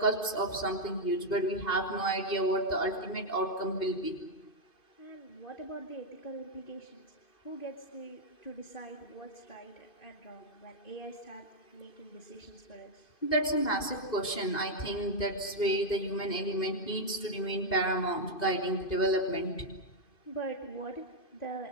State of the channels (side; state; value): right; late; 2.5 ms